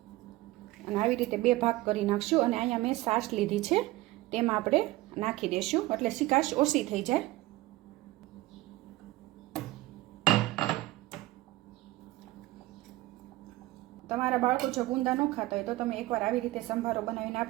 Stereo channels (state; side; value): quieter; left; 18.4 dB